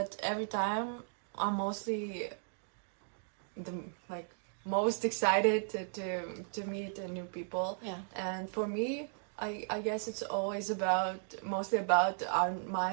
every time I'm mostly most excited to meet new people. And for me, I guess it's always mostly about my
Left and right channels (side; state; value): left; silent; digital silence